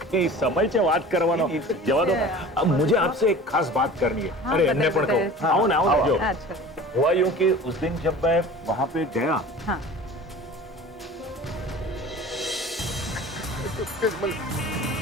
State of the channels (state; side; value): normal; both; correlation 0.40